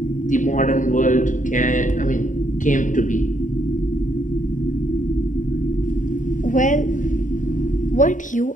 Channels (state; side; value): late; right; 0.37 ms